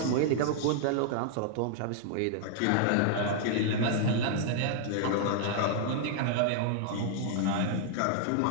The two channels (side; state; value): both; different; correlation -0.01